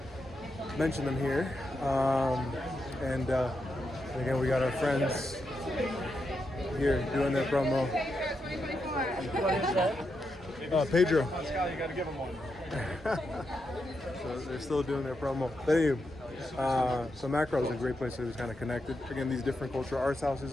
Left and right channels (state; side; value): normal; both; correlation 0.84